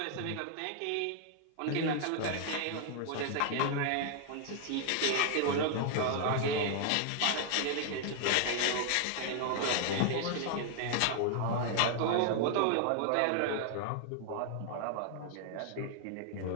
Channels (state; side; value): different; both; correlation 0.00